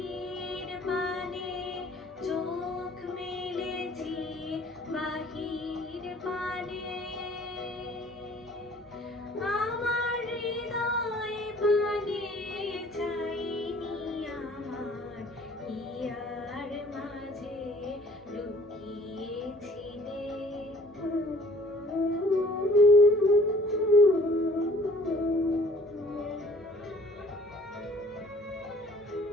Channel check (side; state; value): both; normal; correlation 0.54